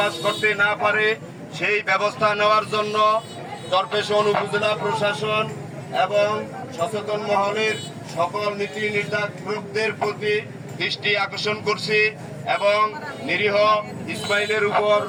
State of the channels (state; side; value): identical; both; correlation 1.00